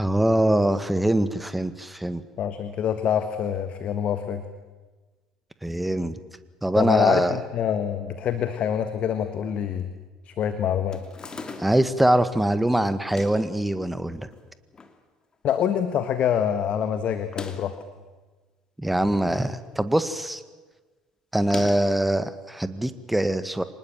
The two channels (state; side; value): normal; both; correlation 0.82